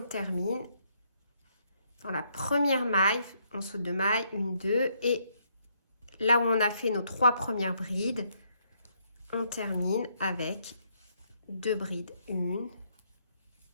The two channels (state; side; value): inverted; both; correlation -0.73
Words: dans la première maille, on saute 2 mailles, 1, 2, et là où on a fait nos 3 premières brides, on termine avec 2 brides, 1